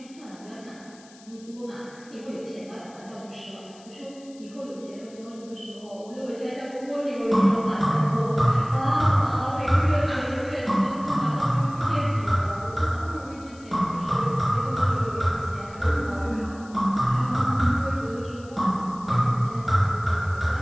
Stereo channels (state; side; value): noise; left; hiss, 24 dB below the sound